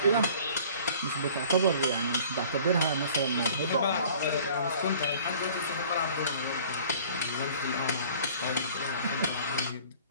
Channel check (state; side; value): inverted; both; correlation -0.49